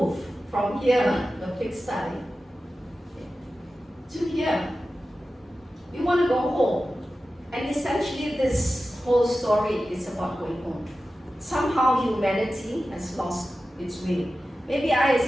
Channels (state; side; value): normal; both; correlation 0.94